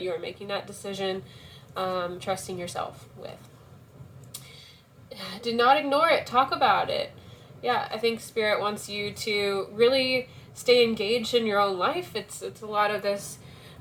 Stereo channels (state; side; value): identical; both; correlation 1.00